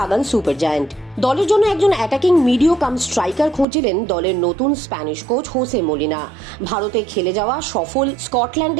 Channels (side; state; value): left; drops out; at 3.7 s